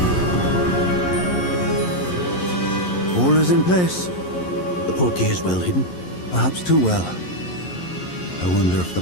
All is in place. The portkey is well hidden. Perhaps too well. I wonder if the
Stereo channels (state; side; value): late; right; 11 ms